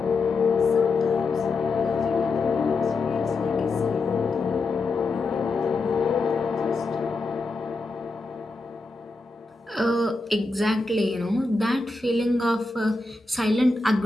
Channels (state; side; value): quieter; right; 3.5 dB